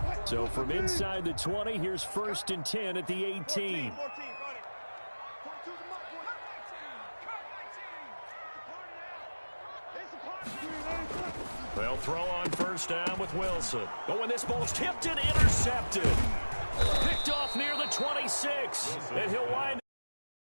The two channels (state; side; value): inverted; both; correlation -1.00